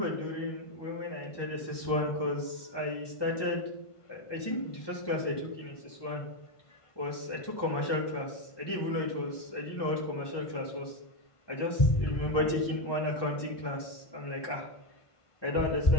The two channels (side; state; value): right; late; 1.2 ms